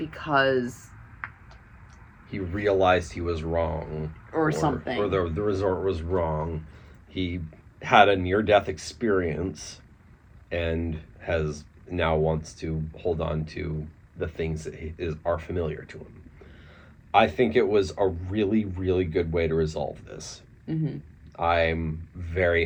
he realized he was wrong. Or something. Or the resort was wrong. He had a near-death experience and has now wants to hold on to the things that are familiar to him. I think it was a really, really good way to resolve this. Mm-hmm. I'm very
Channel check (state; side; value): identical; both; correlation 1.00